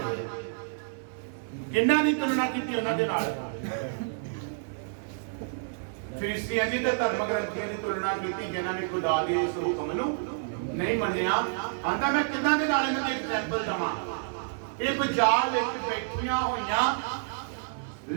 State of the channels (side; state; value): left; silent; 59 dB below the other